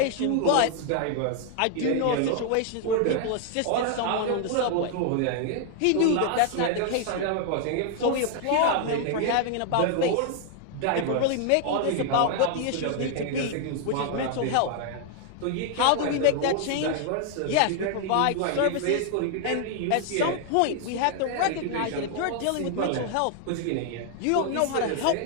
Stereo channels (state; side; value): different; both; correlation 0.00